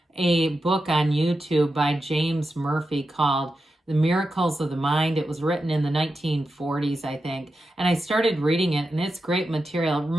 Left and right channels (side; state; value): both; normal; correlation 0.89